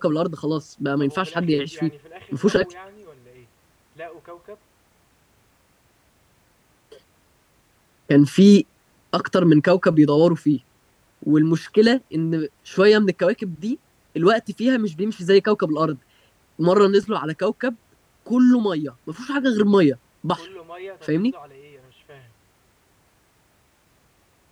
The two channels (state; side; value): identical; both; correlation 1.00